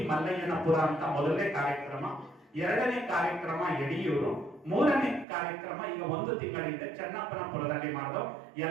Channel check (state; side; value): drops out; left; at 5.2 s